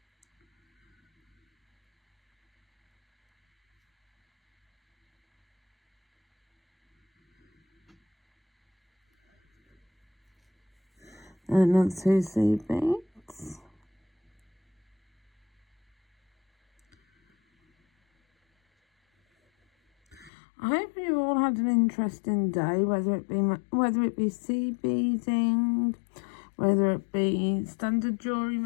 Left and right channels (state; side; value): drops out; right; at 20.3 s